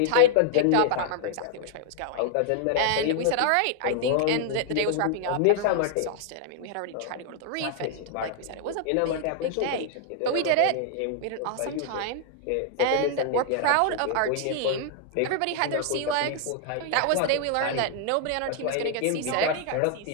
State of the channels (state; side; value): different; both; correlation -0.01